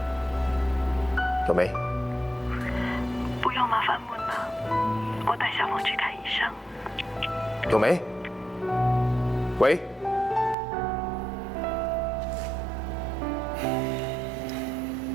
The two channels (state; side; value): drops out; left; at 10.6 s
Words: 有没？不用麻烦梦了，我带小梦去看医生。有没？喂。